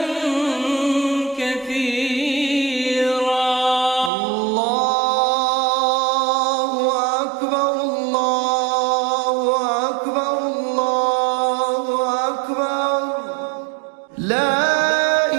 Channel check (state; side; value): drops out; left; at 4.1 s